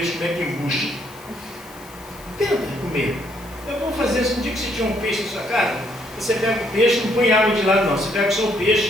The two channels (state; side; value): noise; left; hiss, 22 dB below the sound